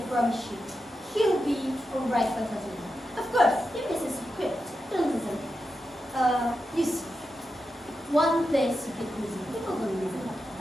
promise you, he'll be alright by Saturday. Of course, if this is equipped, don't listen. You see, one place you get busy, people don't listen.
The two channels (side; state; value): both; normal; correlation 0.89